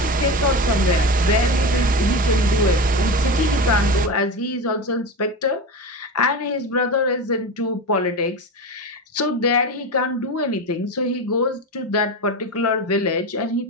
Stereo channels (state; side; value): normal; both; correlation 0.23